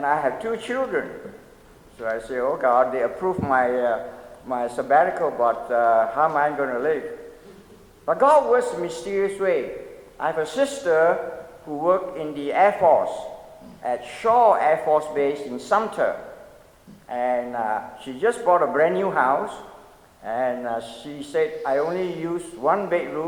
I have 2 children. So I say, oh God, they approved my sabbatical, but how am I going to live? But God works in a mysterious way. I have a sister who worked in the Air Force at Shaw Air Force Base in Sumter. And she just bought a brand new house. And she said, I only use 1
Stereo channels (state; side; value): identical; both; correlation 1.00